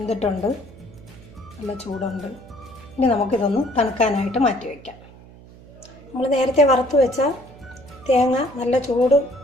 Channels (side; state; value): right; noise; hum, 21 dB below the sound